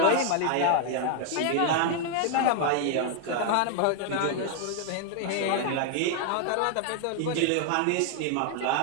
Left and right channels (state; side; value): different; both; correlation 0.00